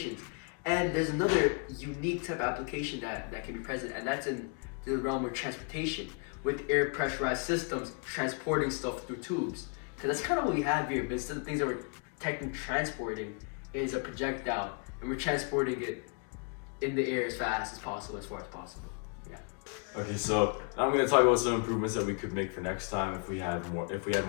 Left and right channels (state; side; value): quieter; right; 36.9 dB